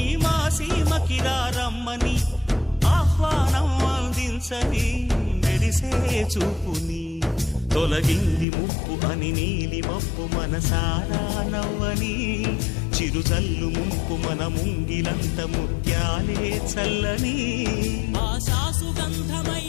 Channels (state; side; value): drops out; right; at 8.5 s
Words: మా సీమకిరా రమ్మని ఆహ్వానం అందించని మెరిసే చూపుని తొలగింది ముప్పు అని నీలి మప్పు మనసారా నవ్వని చిరుజల్లు ముంపు మన ముంగిలంత ముత్యాలే చల్లని ఆశా